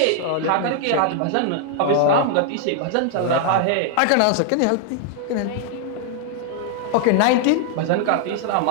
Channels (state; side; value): different; both; correlation 0.00